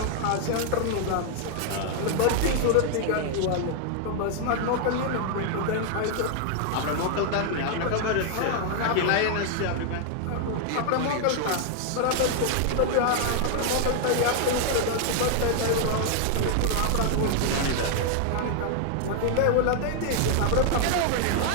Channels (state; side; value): different; both; correlation 0.00